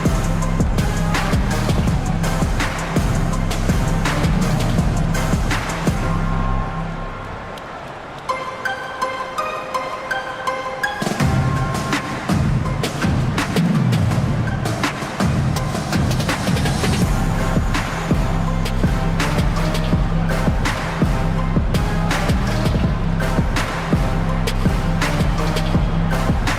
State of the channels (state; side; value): identical; both; correlation 1.00